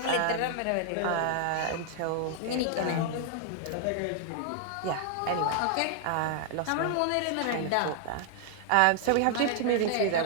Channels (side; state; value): both; different; correlation 0.00